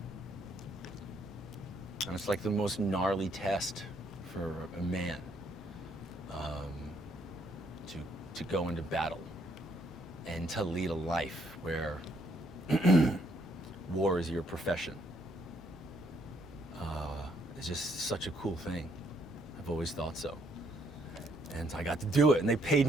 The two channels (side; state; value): both; normal; correlation 0.70